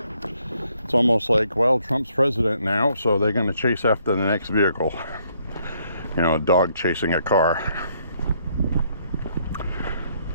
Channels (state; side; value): inverted; both; correlation -0.70